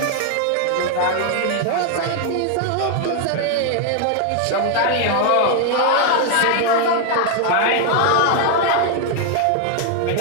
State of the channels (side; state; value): both; different; correlation 0.00